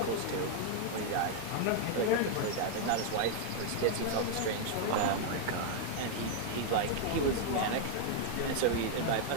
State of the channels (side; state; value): both; different; correlation 0.00